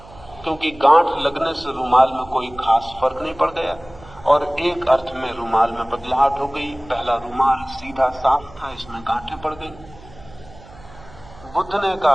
क्योंकि गांठ लगने से रुमाल में कोई खास फर्क नहीं पड़ गया, और एक अर्थ में रुमाल में बदलाहट हो गई। पहला रुमाल सीधा साफ था, इसमें गांठें पड़ गई। बुद्ध ने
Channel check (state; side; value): noise; right; hum, 21 dB below the sound